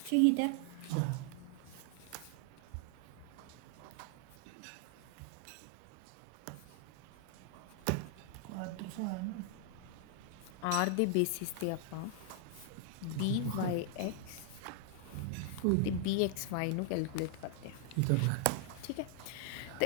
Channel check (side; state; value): both; different; correlation 0.00